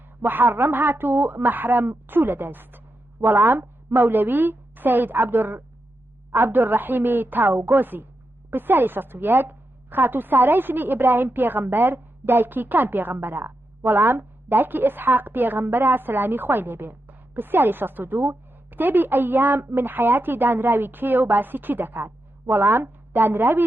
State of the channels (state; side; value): normal; both; correlation 0.87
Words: محەڕەم هات و مەحرەم چوو لە دەست؟ وەڵام مەولەوی سەید عەبدوڕەحیمی تاوگۆزی. پرسیاری 61 خاتوو سارای ژنی ئیبراهیم پێغەمبەر دایکی کام پێغەمبەرە؟ وەڵام دایکی ئیسحاق پێغەمبەرە سەلامی خوای لێبێ. پرسیاری 62 کتێبی ئەیام من حیاتی دانراوی کێ و باسی چی دەکات؟ وەڵام